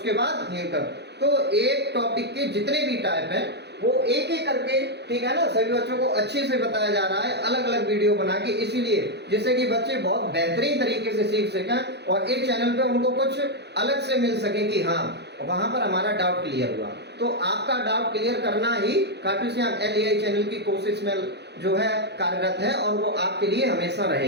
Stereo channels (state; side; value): late; left; 0.49 ms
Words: बाद न्यूटर। तो एक टॉपिक के जितने भी टाइप हैं वो एक एक करके, ठीक है ना, सभी बच्चों को अच्छे से बताया जा रहा है, अलग अलग वीडियो बना के, इसीलिए जिससे कि बच्चे बहुत बेहतरीन तरीके से सीख सकें और एक चैनल पे उनको कुछ अलग से मिल सके कि हाँ वहां पर हमारा डाउट क्लियर हुआ। तो आपका डाउट क्लियर करना ही खाटू श्याम LEI चैनल की कोशिश में जो है कार्यरत है और वो आपके लिए हमेशा